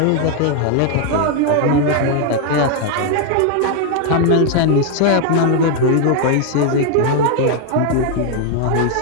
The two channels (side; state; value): both; different; correlation 0.00